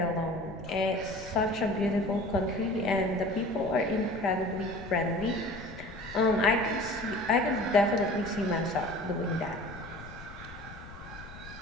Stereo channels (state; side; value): noise; left; rumble, 16 dB below the sound